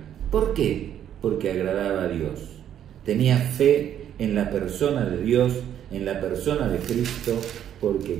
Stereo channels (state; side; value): quieter; left; 10.2 dB